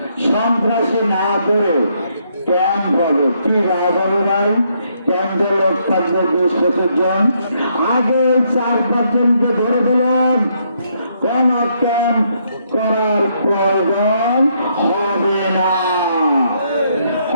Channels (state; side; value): inverted; both; correlation -0.73